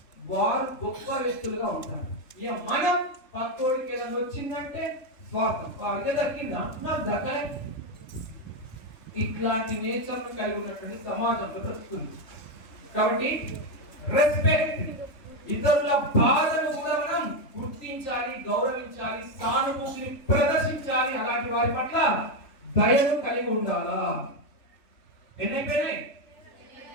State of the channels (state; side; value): late; right; 3.4 ms